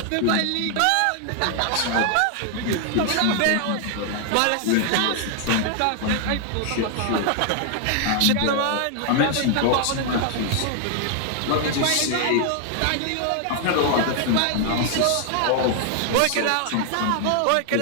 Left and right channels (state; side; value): different; both; correlation 0.00